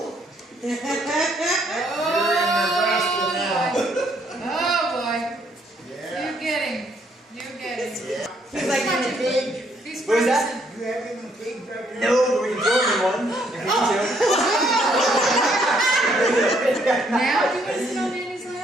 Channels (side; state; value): both; normal; correlation 0.69